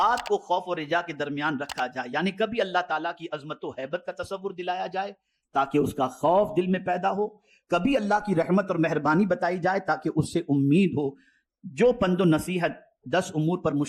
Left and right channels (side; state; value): both; identical; correlation 1.00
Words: کو خوف و رجا کے درمیان رکھا جائے، یعنی کبھی اللہ تعالیٰ کی عظمت و ہیبت کا تصور دلایا جائے تاکہ اس کا خوف دل میں پیدا ہو، کبھی اللہ کی رحمت اور مہربانی بتائی جائے تاکہ اس سے امید ہو۔ جو پند و نصیحت 10 امور پر